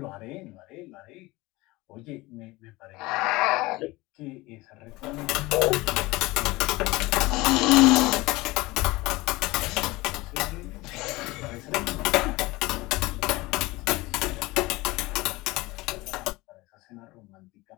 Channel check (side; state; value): right; quieter; 21.2 dB